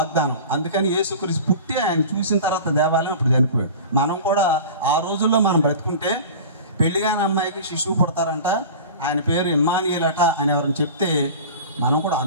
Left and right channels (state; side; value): inverted; both; correlation -0.36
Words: అందుకని యేసుక్రీస్తు పుట్టి ఆయన చూసిన తర్వాత దేవాలయం ఇప్పుడు చనిపోయాడు. మనం కూడా ఆ రోజుల్లో మనం బ్రతుకుంటే పెళ్లిగాని అమ్మాయికి శిశువు పుడతారంట, ఆయన పేరు ఇమ్మానుయేలు అట అని ఎవరైనా చెప్తే మనం కూడా